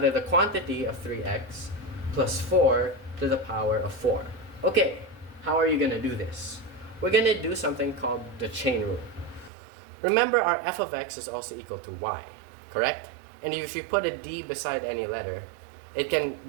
the quantity of 3x plus 4 to the power of 4. Okay, how are you going to do this? We're going to do something called the chain rule. Remember, our f of x is also equal to y, correct? And if you put a d beside any letter, it can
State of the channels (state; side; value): drops out; left; at 9.5 s